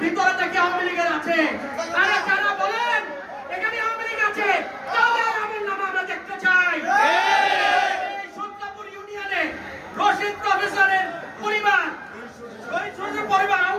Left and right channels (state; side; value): identical; both; correlation 1.00